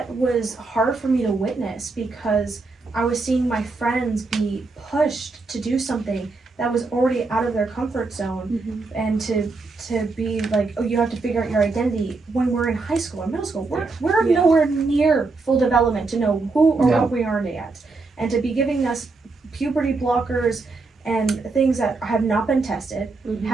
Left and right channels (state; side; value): quieter; left; 3.8 dB